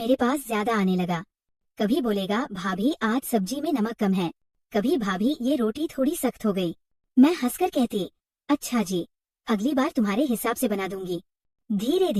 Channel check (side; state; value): both; identical; correlation 1.00